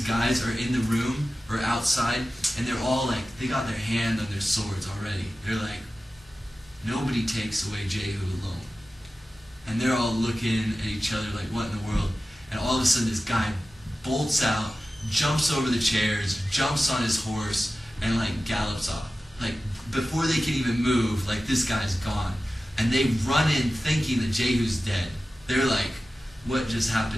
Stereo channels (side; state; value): both; normal; correlation 0.95